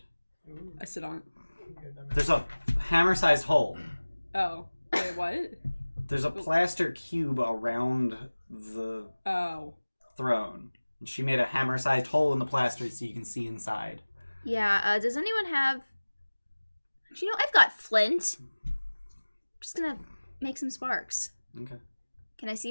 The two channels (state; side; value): inverted; both; correlation -1.00